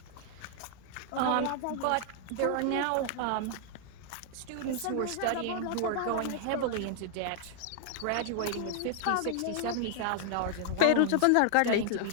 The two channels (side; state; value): both; different; correlation 0.00